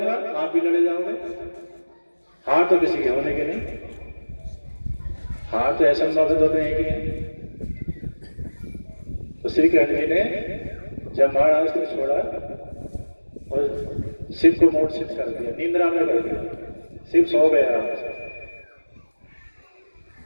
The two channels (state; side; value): inverted; both; correlation -1.00